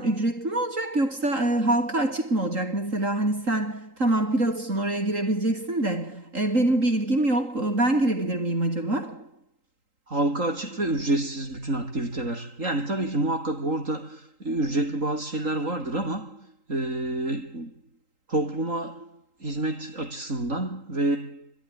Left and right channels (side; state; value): left; late; 3.8 ms